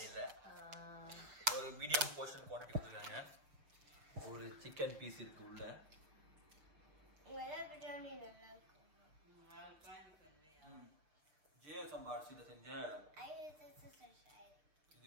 இல்ல. ஒரு மீடியம் போர்ஷன் குவாண்டிட்டி கொடுத்துருக்காங்க. ஒரு சிக்கன் பீஸ் இருக்கு உள்ள. ஜியோ சம்பா அரிசியில செஞ்ச இது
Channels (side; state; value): left; late; 6.6 ms